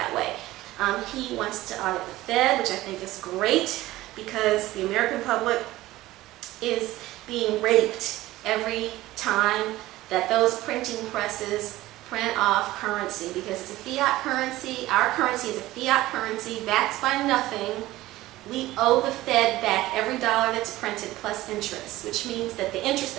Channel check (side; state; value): left; quieter; 16.9 dB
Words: way. He wants to audit the Fed, which I think is great because the American public is being raped every time that those printing presses print off currency, because it's a fiat currency. Our currency is a fiat currency backed by nothing. We owe the Fed back every dollar that's printed plus interest, which means that the interest